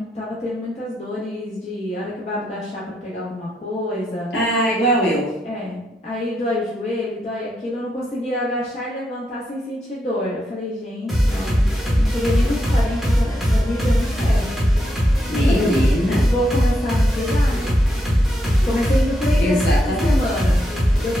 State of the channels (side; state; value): both; normal; correlation 0.82